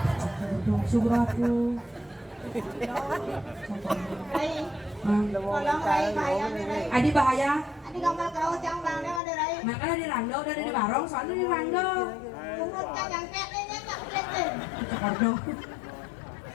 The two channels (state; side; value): drops out; right; at 9.2 s